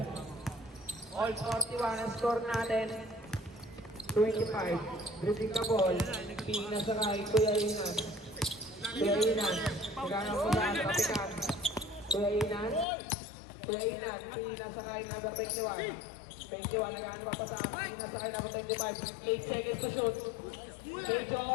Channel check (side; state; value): right; drops out; at 12.9 s